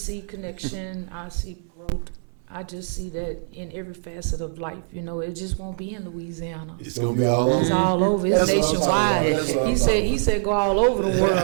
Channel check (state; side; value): silent; left; 63 dB below the other